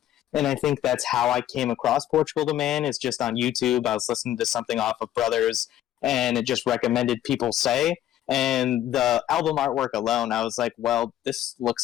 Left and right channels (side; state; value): right; quieter; 12.3 dB